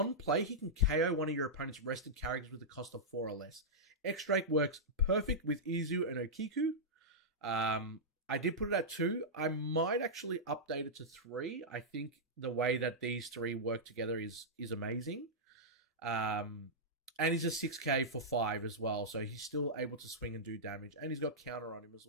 play, he can KO one of your opponent's rested characters with a cost of 4 or less. X-Drake works perfect with Izu and Okiku. I did put it at 2. I might actually update it to 3. I think the way that these 3 work together is amazing. And he's a 6k for 5 as well, so he's still able to swing and do damage. And he's got counter on him as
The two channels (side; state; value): both; normal; correlation -0.11